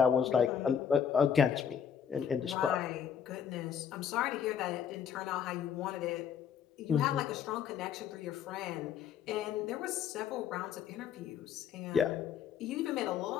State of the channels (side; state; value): right; quieter; 8.0 dB